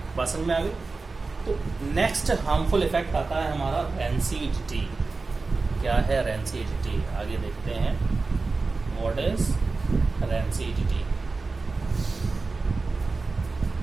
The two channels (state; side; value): quieter; left; 3.9 dB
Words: बात समझ में आ गई। तो नेक्स्ट हार्मफुल इफेक्ट आता है हमारा रेंसिडिटी। क्या है रेंसिडिटी, आगे देखते हैं। What is rancidity?